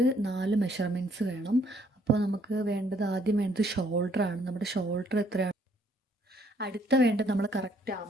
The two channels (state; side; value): normal; both; correlation 0.66